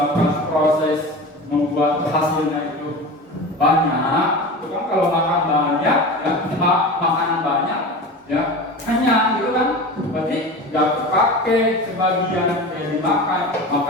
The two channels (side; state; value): both; normal; correlation 0.31